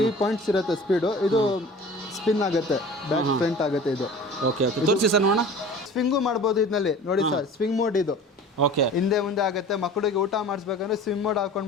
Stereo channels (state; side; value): normal; both; correlation 0.41